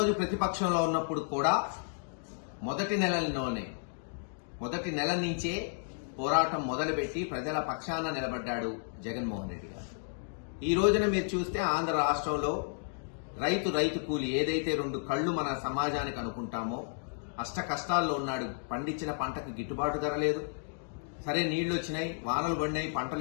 ప్రతిపక్షంలో ఉన్నప్పుడు కూడా మొదటి నెల నుంచే పోరాటం మొదలుపెట్టి ప్రజల పక్షాన నిలబడ్డాడు జగన్మోహన్ రెడ్డి గారు. ఈ రోజున మీరు చూస్తే ఆంధ్ర రాష్ట్రంలో రైతు కూలి ఏదైతే 2 కళ్లు మన సమాజానికి అనుకుంటామో అష్ట కష్టాల్లో ఉన్నాడు. పండించిన పంటకు గిట్టుబాటు ధర లేదు. సరే నీళ్లు వచ్చినాయి, వానలు పడినాయి,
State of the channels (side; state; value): right; silent; digital silence